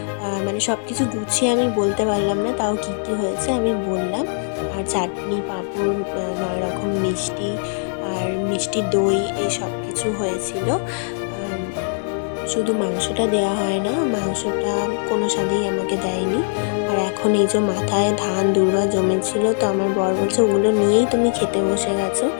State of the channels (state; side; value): silent; right; 65 dB below the other